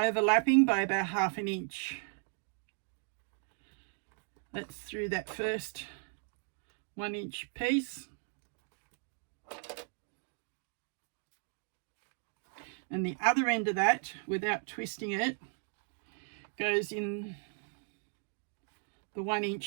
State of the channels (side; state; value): left; silent; 54 dB below the other